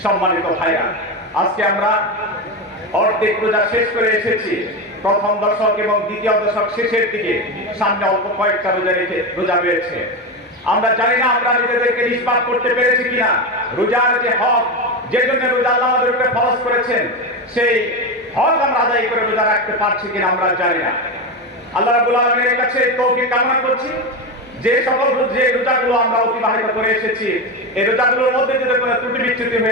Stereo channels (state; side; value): normal; both; correlation 0.16